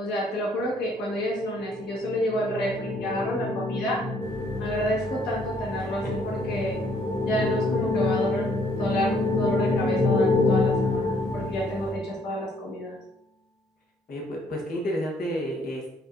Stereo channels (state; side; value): normal; both; correlation 0.65